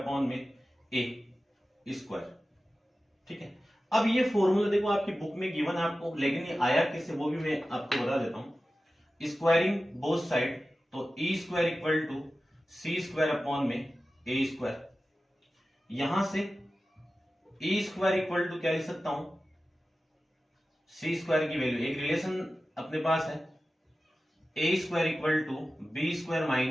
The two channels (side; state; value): both; normal; correlation 0.95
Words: में ए स्क्वायर। ठीक है, अब ये फॉर्मूला देखो आपकी बुक में गिवन है आपको, लेकिन ये आया किससे वो भी मैं आपको बता देता हूं। स्क्वायरिंग बोथ साइड, तो e square equal to c square upon में ए स्क्वायर। यहां से ई स्क्वायर इक्वल टू क्या लिख सकता हूं? सी स्क्वायर की वैल्यू, एक रिलेशन अपने पास है, a square equal to b square